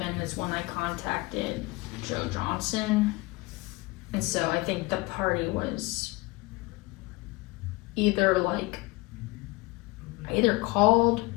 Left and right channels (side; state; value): right; quieter; 23.3 dB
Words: is when I contacted Joe Johnson. And so I think the party was either like, I either called